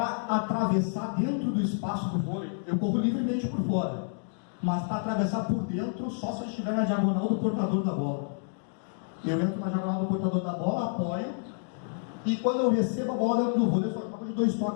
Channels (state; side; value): silent; right; digital silence